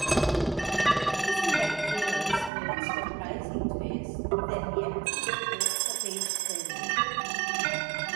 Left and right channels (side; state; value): left; drops out; at 2.5 s